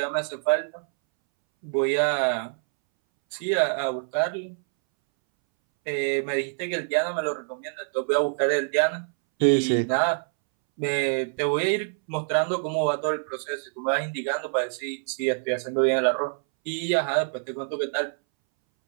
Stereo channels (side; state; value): left; silent; 61 dB below the other